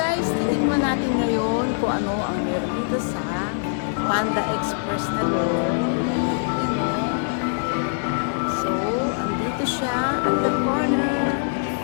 titikman natin ngayon kung ano ang meron dito sa Panda Express na to. Yan o. So, andito siya at the corner.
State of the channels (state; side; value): silent; right; digital silence